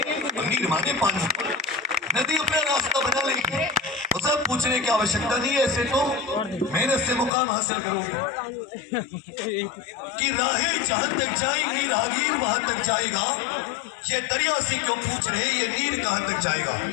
नीर माने पानी। नदी अपना रास्ता बना लेगी, उसे पूछने की आवश्यकता नहीं है। ऐसे तो मेहनत से मुकाम हासिल करोगे कि राहें जहां तक जाएंगी राहगीर वहां तक जाएगा। ये दरिया से क्यों पूछ रहे, ये नीर कहां तक जाएगा।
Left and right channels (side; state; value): right; drops out; at 7.3 s